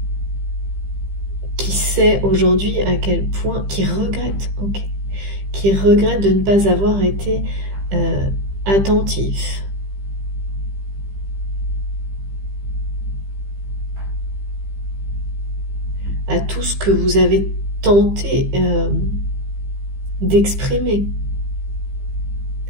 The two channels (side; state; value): left; late; 15 ms